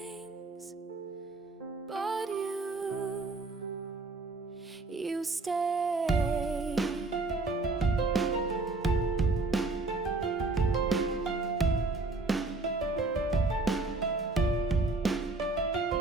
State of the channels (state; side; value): quieter; left; 3.3 dB